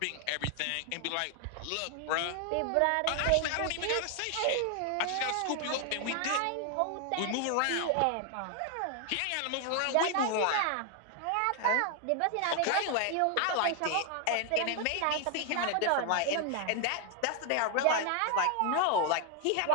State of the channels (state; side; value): different; both; correlation 0.00